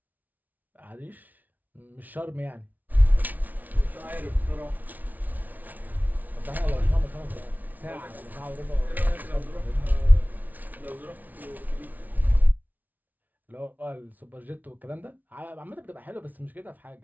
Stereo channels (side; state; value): left; late; 0.078 ms